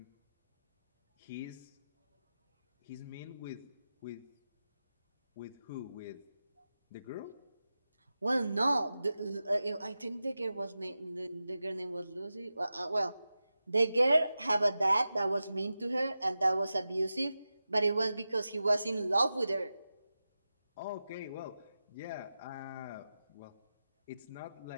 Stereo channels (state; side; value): inverted; both; correlation -0.93